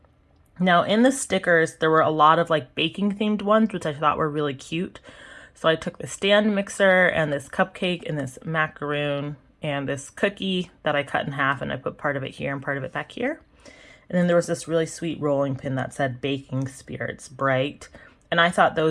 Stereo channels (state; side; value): identical; both; correlation 1.00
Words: Now in the stickers, there were a lot of like baking themed ones, which I thought were really cute. So I took the stand mixer and this cupcake and this macaroon and this cookie that I cut in half, and I put part of it here and part of it back here. And then there was this really sweet rolling pin that said Baking Spirits Bright. And I thought